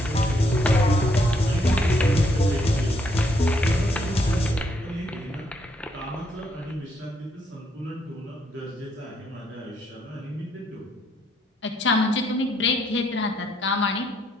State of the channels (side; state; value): both; normal; correlation 0.72